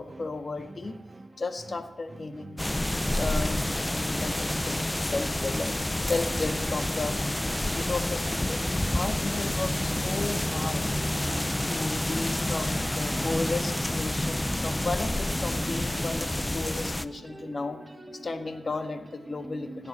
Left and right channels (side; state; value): both; normal; correlation 0.98